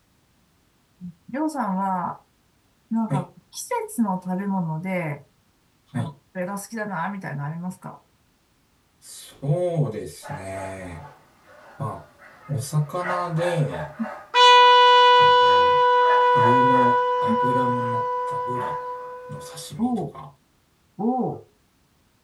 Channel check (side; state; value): both; identical; correlation 1.00